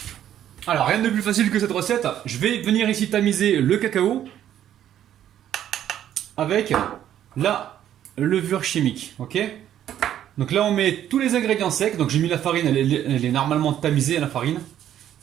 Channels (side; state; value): left; quieter; 11.0 dB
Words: Alors rien de plus facile que cette recette. Je vais venir ici tamiser le cacao avec la levure chimique, ok? Donc là on met tous les ingrédients secs. Donc j'ai mis la farine, elle est normalement tamisée la farine.